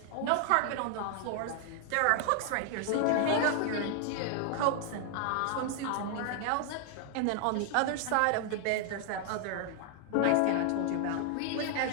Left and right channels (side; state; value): both; different; correlation 0.00